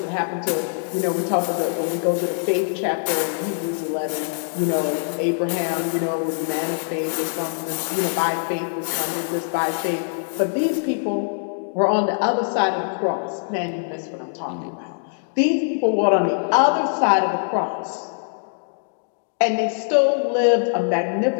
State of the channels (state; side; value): silent; right; digital silence